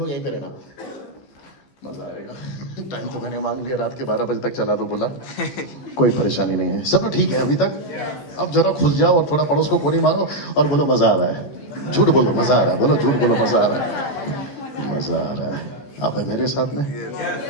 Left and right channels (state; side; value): late; right; 15 ms